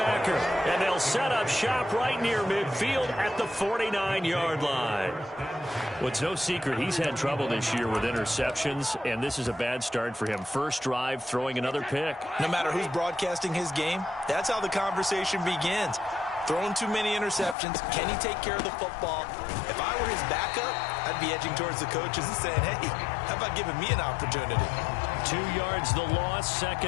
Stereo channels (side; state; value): right; drops out; at 17.6 s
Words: and they'll set up shop right near midfield at the 49-yard line. Well, it's no secret he's had trouble this year with interceptions, and this is a bad start for him. First drive, throwing another pick. No matter who's broadcasting his game, that's how the conversation begins. Throwing too many interceptions. Can he take care of the football? If I were his backup, I'd be edging towards the coaches and saying, hey, how about giving me an opportunity? 2 yards the loss,